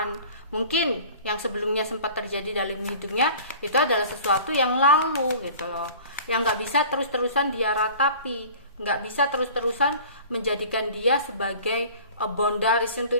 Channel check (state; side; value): inverted; both; correlation -0.43